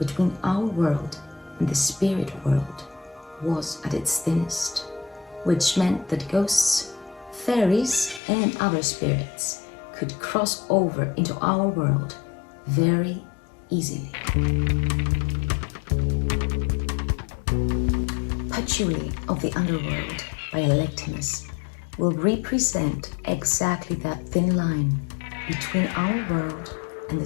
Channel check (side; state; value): right; drops out; at 8.2 s